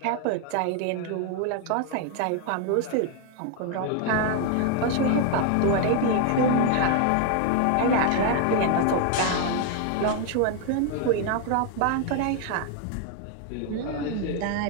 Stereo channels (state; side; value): different; both; correlation 0.00